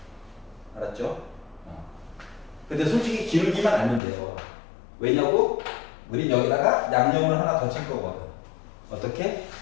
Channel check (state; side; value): drops out; right; at 4.0 s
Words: 알았죠? 근데 솔직히 기울기만 알면 돼요. 왜냐고? 우린 여기다가 양념을 하나 더 칠 거거든. 어떻게?